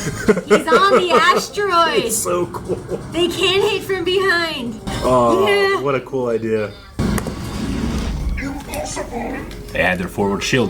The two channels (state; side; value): identical; both; correlation 1.00